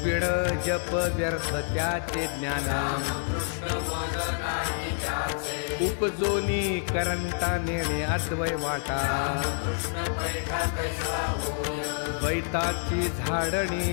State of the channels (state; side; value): silent; right; 59 dB below the other